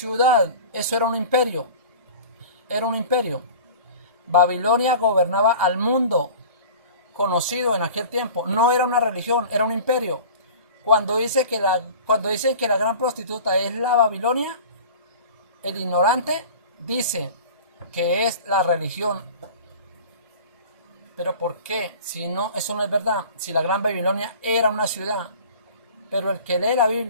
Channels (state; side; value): inverted; both; correlation -0.40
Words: eso era un imperio. Era un imperio. Babilonia gobernaba al mundo conocido en aquel tiempo. No era una religión, era un imperio. Cuando dicen que la gran prostituta es la Babilonia, el ignorante dice que es la religión. Pero ¿por qué? Si no, eso no es verdad. Si la gran Babilonia era una ciudad. Pero el que lee la